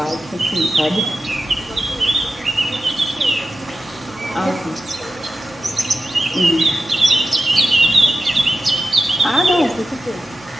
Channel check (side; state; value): both; normal; correlation 0.92